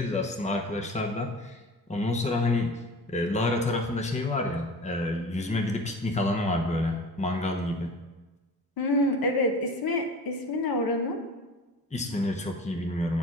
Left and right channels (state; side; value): normal; both; correlation 0.38